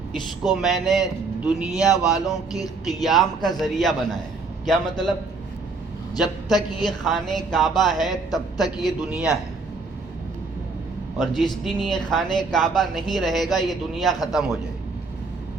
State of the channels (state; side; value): quieter; left; 4.0 dB